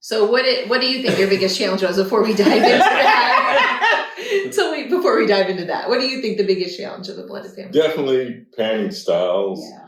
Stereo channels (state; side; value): identical; both; correlation 1.00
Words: So what do you think your biggest challenge was before we dive into that? Before we dive into that, what do you think the biggest challenge of the blended family? Definitely parenting styles. Yeah.